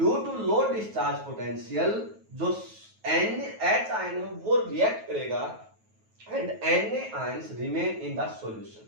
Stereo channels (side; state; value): left; late; 9.3 ms